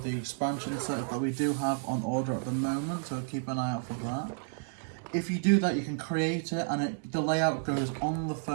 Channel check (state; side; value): silent; left; digital silence